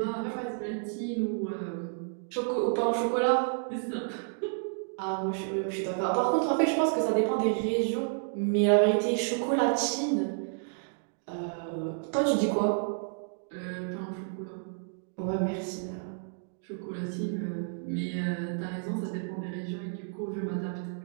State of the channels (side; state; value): left; silent; digital silence